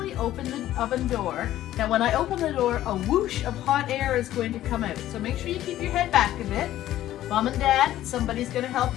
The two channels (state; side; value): quieter; right; 13.5 dB